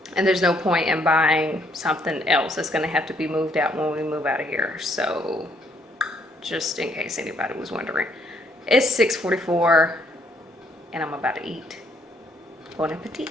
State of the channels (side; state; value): both; normal; correlation 0.69